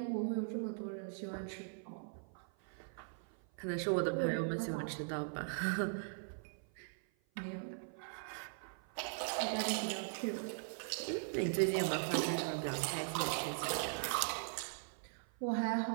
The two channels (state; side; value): silent; left; 51 dB below the other